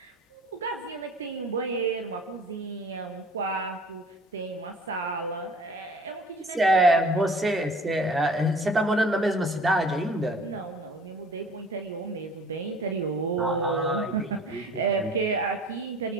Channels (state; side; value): normal; both; correlation 0.48